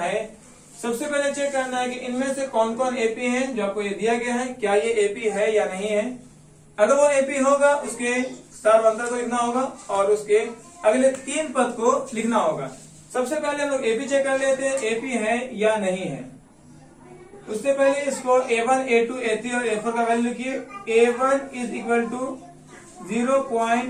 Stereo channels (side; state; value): both; identical; correlation 1.00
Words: सबसे पहले चेक करना है कि इनमें से कौन कौन AP है जो आपको ये दिया गया है, क्या ये AP है या नहीं है। अगर वो AP होगा उसके सार्व अंतर को लिखना होगा और उसके अगले 3 पद को लिखना होगा। सबसे पहले हम लोग AP चेक कर लेते हैं, AP है या नहीं है। उससे पहले इसको A1, A2, A3 और A4 का वैल्यू लिखिए। A1 इज इक्वल टू